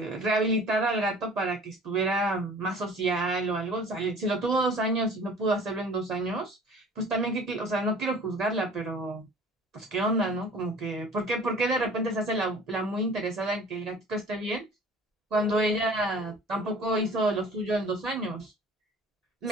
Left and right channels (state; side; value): normal; both; correlation 0.46